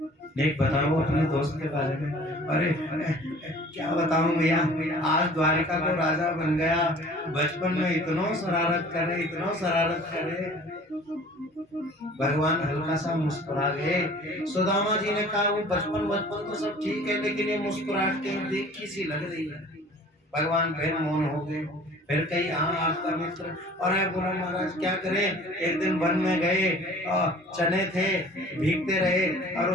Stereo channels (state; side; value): normal; both; correlation 0.48